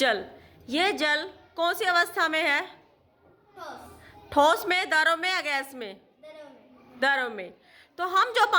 ये जल कौन सी अवस्था में है? ठोस में, द्रव में या गैस में? द्रव में। तो हम जो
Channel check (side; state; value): both; identical; correlation 1.00